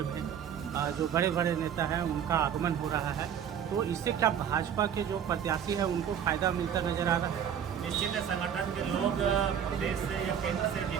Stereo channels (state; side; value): quieter; left; 8.6 dB